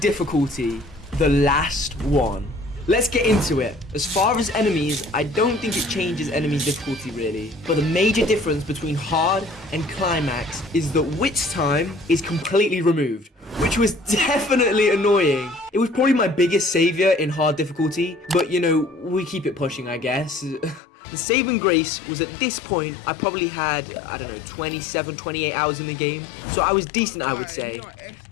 the last one. Let's get into it. As far as enemies, I don't think it changes enemy difficulty really. But the major difference between hard and climax is that witch time is completely removed, which was definitely annoying. It was probably my biggest savior in hard difficulty, but you know, we keep it pushing, I guess. The saving grace was at this point, I probably had, I don't know, 27, 28 hours in the game. So I was decent, I would say,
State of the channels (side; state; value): right; drops out; at 20.8 s